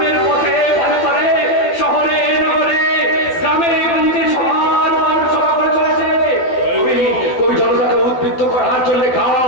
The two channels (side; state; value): right; late; 12 ms